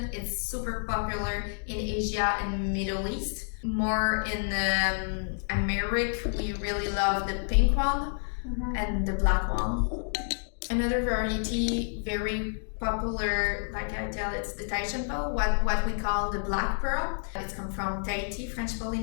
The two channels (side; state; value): right; silent; digital silence